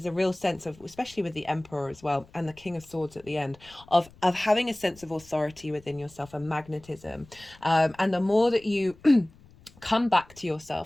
a real sense of, especially with the Emperor as well, and the King of Swords at the end, of having a sense of authority within yourself and magnetism. And the more that you come back to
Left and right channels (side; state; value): left; noise; rumble, 25 dB below the sound